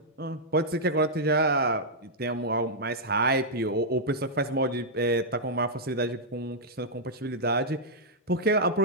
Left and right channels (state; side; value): normal; both; correlation -0.07